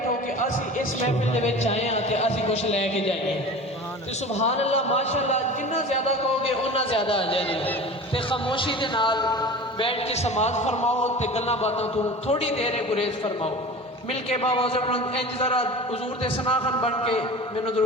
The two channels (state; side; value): normal; both; correlation 0.36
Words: कि असीं इस महफिल दे विच आए हैं तो असीं कुछ लैके जाइए। तो सुभान अल्लाह माशाअल्लाह, जिन्ना ज़्यादा कहोगे उन्ना ज़्यादा आ जाए। तो खामोशी के नाल बैठ के समाज फरमाओ, तो गल्लां बातों तो थोड़ी देर गुरेज फरमाओ। मिल के बाबा इंज जरा हुजूर दे सनाखन बन के मैनू